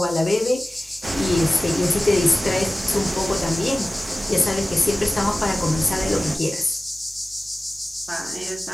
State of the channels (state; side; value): normal; both; correlation 0.96